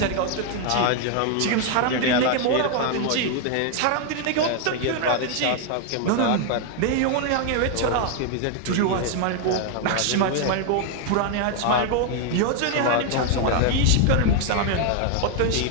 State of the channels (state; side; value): different; both; correlation 0.00